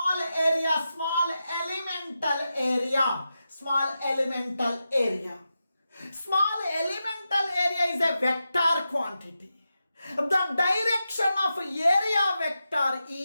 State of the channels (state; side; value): inverted; both; correlation -0.90